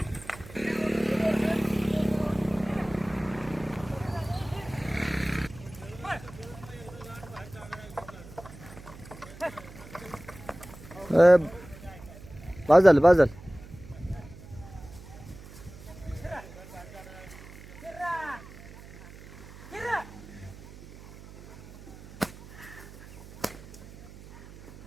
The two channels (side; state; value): right; noise; hum, 17 dB below the sound